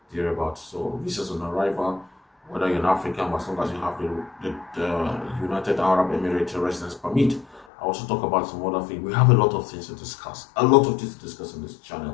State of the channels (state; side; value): drops out; right; at 7.7 s